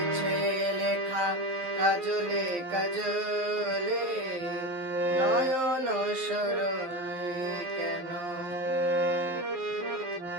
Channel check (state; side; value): late; left; 11 ms